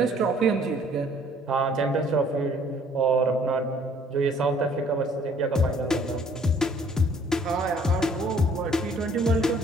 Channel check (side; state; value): both; normal; correlation 0.59